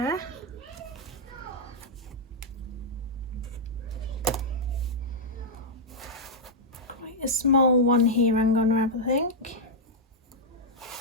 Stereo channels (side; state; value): both; normal; correlation -0.06